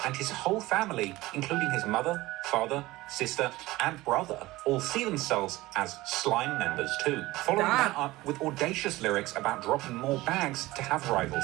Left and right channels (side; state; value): left; quieter; 18.9 dB